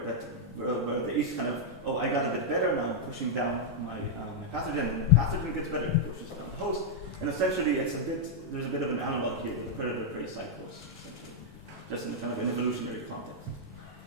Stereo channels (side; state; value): both; normal; correlation -0.04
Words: the yeast kind of, oh, I got a bit better, now I'm pushing down my pathogen, and the pathogen gets better, it pushes down the host, and essentially there's a bit of an analog here with the predator-prey cycles, essentially, just in kind of an evolutionary context.